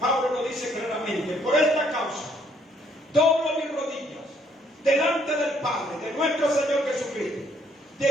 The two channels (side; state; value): both; normal; correlation 0.67